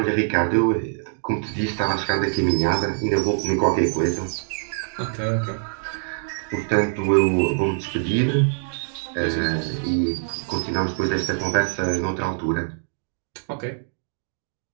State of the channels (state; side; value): silent; left; digital silence